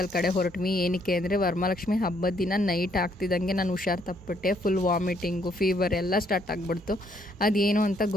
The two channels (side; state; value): both; normal; correlation 0.69